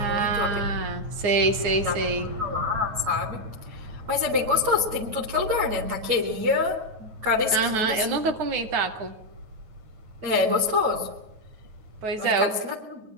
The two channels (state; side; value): late; left; 9.3 ms